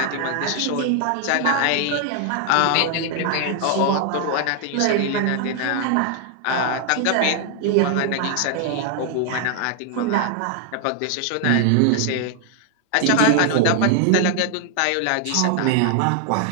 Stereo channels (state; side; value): different; both; correlation 0.00